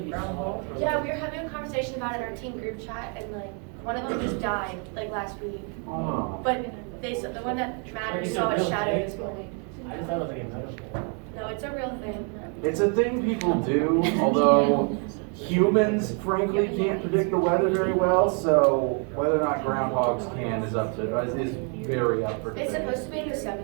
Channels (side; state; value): left; quieter; 38.6 dB